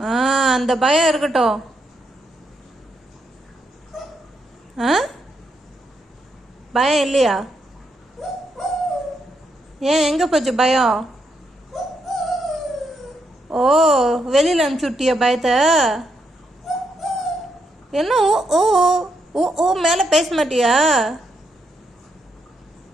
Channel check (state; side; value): normal; both; correlation 0.79